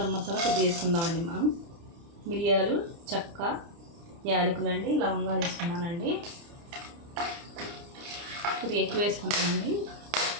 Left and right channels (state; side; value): late; left; 30 ms